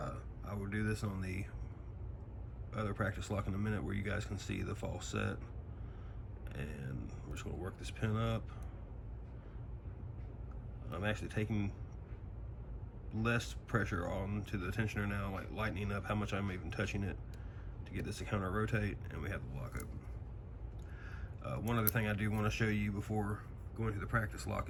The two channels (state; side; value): identical; both; correlation 1.00